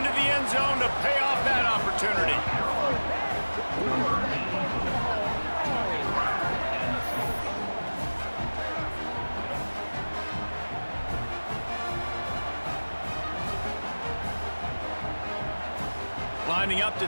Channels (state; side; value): inverted; both; correlation -1.00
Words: the end zone to pay off that opportunity. Lining up to